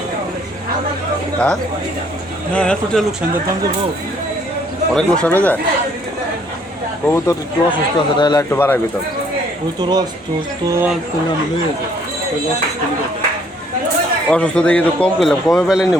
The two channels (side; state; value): both; normal; correlation 0.63